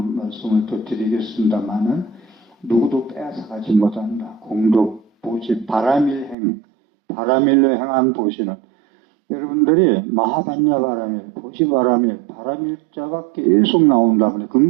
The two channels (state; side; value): drops out; left; at 6.4 s